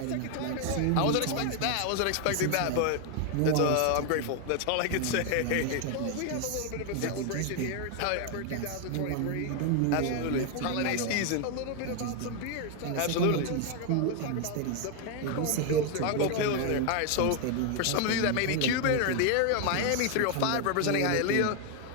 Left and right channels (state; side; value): different; both; correlation 0.01